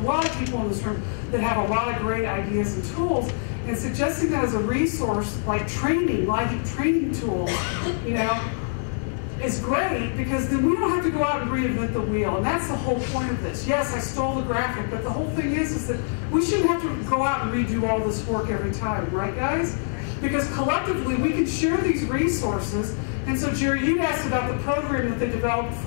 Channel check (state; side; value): silent; right; digital silence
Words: lot of people in this room that have a lot of great ideas and tools. And suggesting that as a resource, like training, LIHEAP training tools, is great because then we don't have to go out and reinvent the wheel. And that's the whole point of this. Yes, I stole the graphic, but the whole thing is that we shouldn't have to go out and redo all this work every time, right, guys? Because collectively, we can share these resources. And so, Jerry, you'd asked about the program that they developed